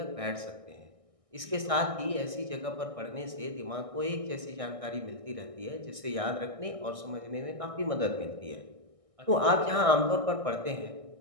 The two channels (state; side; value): late; left; 1.6 ms